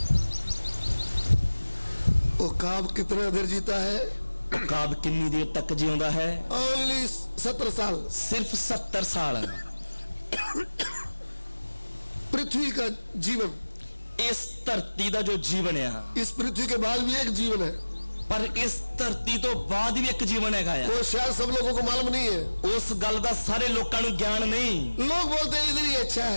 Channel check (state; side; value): inverted; both; correlation -1.00